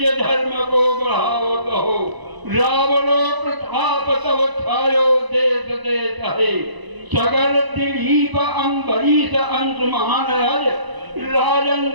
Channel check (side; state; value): left; late; 1.0 ms